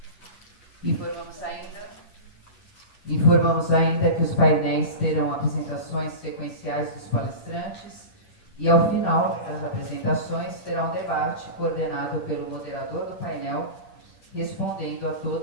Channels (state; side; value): late; right; 10 ms